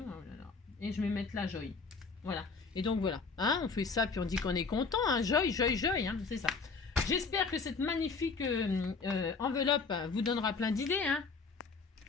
oh là là. Et je vais mettre là, joy. Voilà. Et donc voilà, hein, on fait ça, puis on dit qu'on est content, hein, joy, joy, joy, hein, c'est ça. J'espère que cette magnifique enveloppe vous donnera plein d'idées, hein.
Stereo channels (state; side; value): quieter; right; 4.6 dB